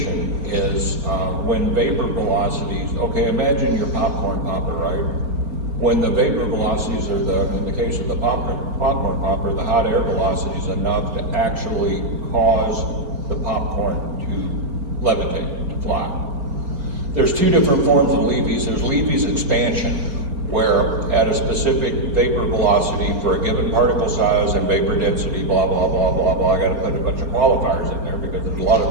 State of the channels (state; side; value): late; left; 4.3 ms